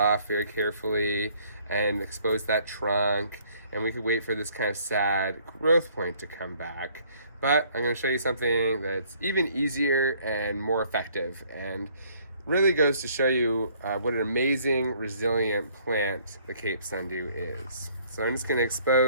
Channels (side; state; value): both; inverted; correlation -0.62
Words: very carefully and expose that trunk. And we could wait for this kind of sad growth point to come back. But I'm going to show you something that's even easier and more effective, and really goes to show you what an amazing, resilient plant the Cape Sundew is. So I'm just going to